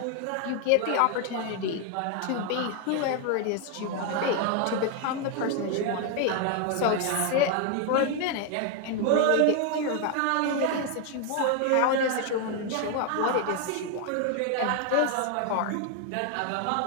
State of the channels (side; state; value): both; different; correlation 0.01